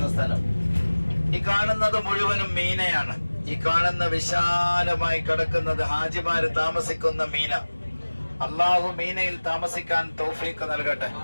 സ്ഥലം. ഈ കാണുന്നത് മുഴുവനും മീനയാണ്. ഈ കാണുന്ന വിശാലമായി കിടക്കുന്നത് ഹാജിമാര് താമസിക്കുന്ന മീന. അള്ളാഹു മീനയിൽ താമസിക്കാൻ തൗഫീഖ് നൽകട്ടെ.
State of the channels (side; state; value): both; inverted; correlation -1.00